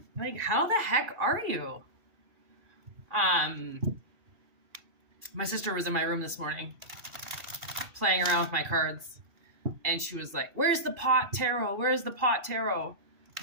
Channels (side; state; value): left; late; 2.4 ms